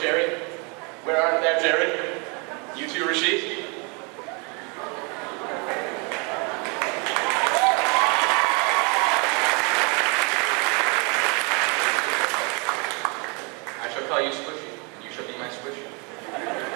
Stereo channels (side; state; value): left; quieter; 32.5 dB